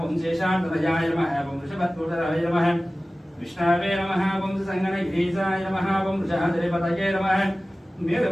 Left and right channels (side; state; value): both; normal; correlation 0.97